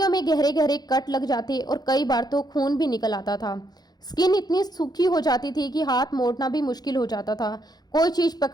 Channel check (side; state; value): right; late; 0.19 ms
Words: में गहरे गहरे कट लग जाते और कई बार तो खून भी निकल आता था। स्किन इतनी सूखी हो जाती थी कि हाथ मोड़ना भी मुश्किल हो जाता था। कोई चीज